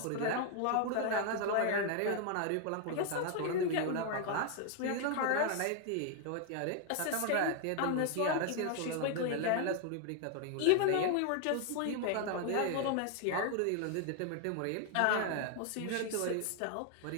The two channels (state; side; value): different; both; correlation 0.00